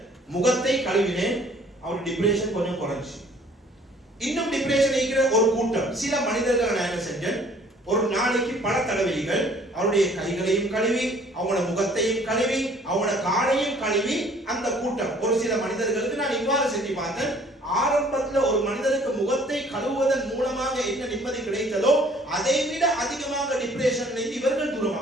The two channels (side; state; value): both; normal; correlation 0.56